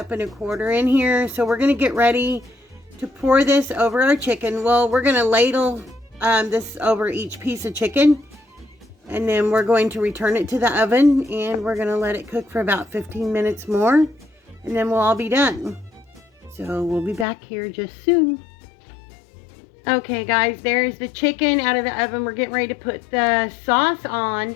and a quarter in here. So we're going to get ready to pour this over our chicken. Well, we're going to ladle this over each piece of chicken. And then we're going to return it to the oven. And we're going to let it cook for about 15 minutes more. And then we'll all be done. So we'll be back here just soon. Okay, guys, there's the chicken out of the oven. We're getting ready to put the sauce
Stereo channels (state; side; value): drops out; right; at 17.2 s